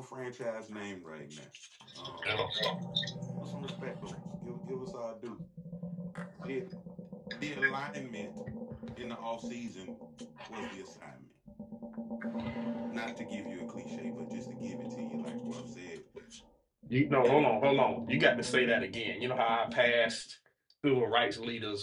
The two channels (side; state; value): both; identical; correlation 1.00